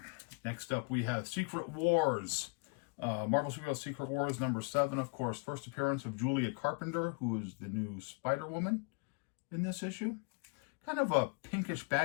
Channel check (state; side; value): quieter; right; 32.7 dB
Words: Next up, we have Secret Wars. Marvel Superhero Secret Wars number 7, of course. First appearance of Julia Carpenter, who is the new Spider-Woman in this issue. Kind of a pinkish